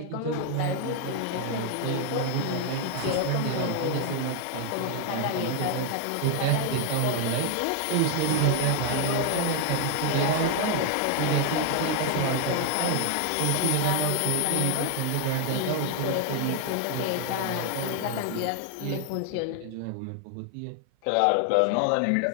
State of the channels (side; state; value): both; different; correlation 0.00